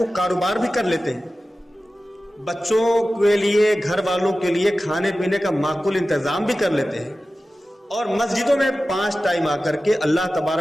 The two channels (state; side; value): normal; both; correlation 0.95